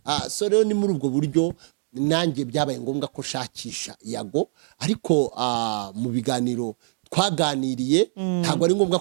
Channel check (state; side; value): silent; left; digital silence